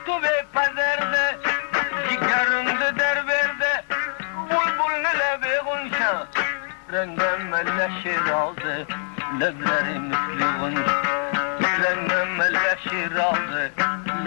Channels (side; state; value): right; silent; 63 dB below the other